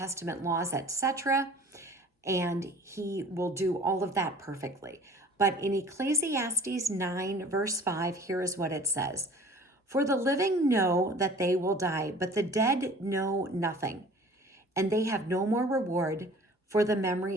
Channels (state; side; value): normal; both; correlation 0.47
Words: laws, etc. And he will do all of that perfectly. But in Ecclesiastes 9, verse 5, here is what it says. For the living know that they will die, but the dead know nothing, and they have no more reward, for the